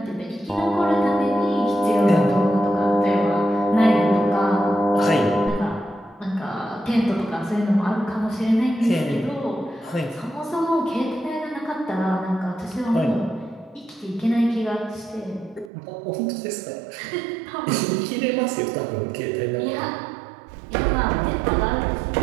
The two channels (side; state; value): left; drops out; at 15.7 s